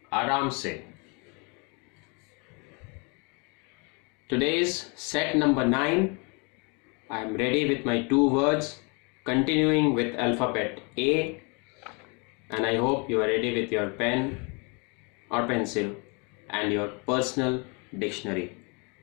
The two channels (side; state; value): right; quieter; 32.7 dB